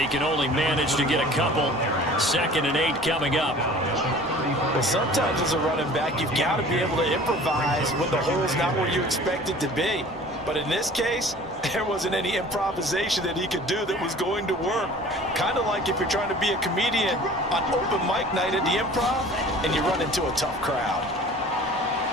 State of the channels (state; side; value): normal; both; correlation 0.46